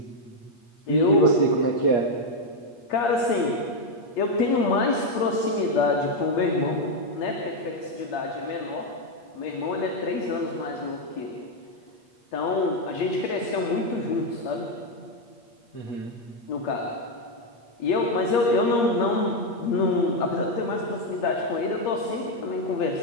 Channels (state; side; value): late; right; 8.5 ms